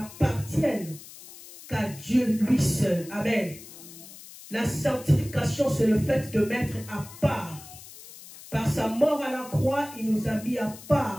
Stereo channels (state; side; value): noise; left; hiss, 17 dB below the sound